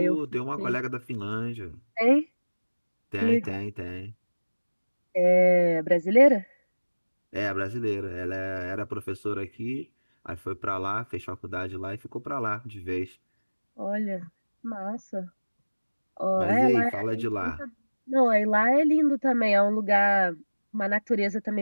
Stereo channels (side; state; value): both; inverted; correlation -1.00